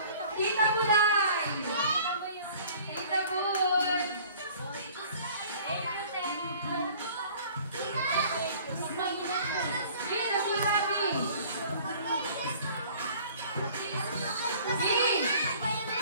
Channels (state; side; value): inverted; both; correlation -0.51